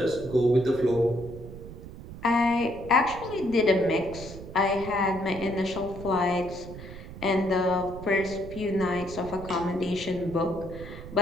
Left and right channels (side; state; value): right; noise; rumble, 13 dB below the sound